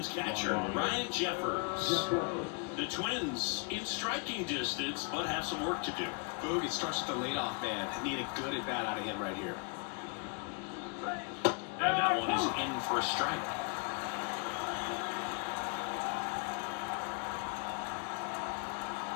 catcher, Ryan Jeffers. The Twins in striking distance, but have some work to do. Boog, it starts with the leadoff man. Need a good at bat out of him right here. And that one is in for a strike.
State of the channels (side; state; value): right; quieter; 36.3 dB